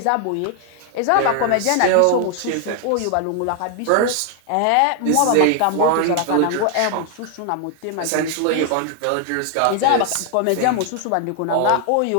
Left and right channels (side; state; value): both; different; correlation 0.00